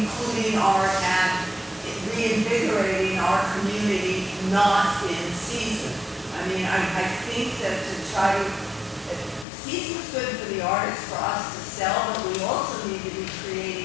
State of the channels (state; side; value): drops out; right; at 9.5 s